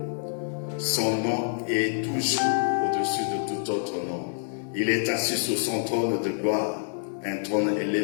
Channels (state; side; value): silent; right; digital silence